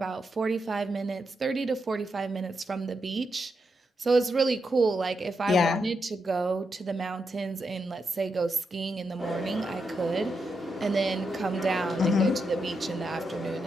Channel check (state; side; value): normal; both; correlation 0.84